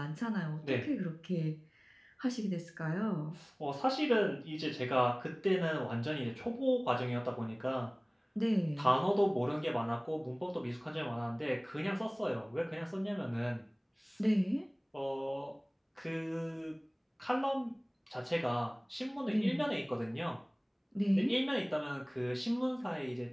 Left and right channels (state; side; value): identical; both; correlation 1.00